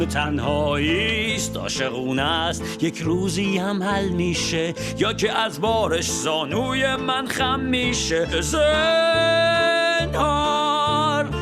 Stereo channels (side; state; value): both; identical; correlation 1.00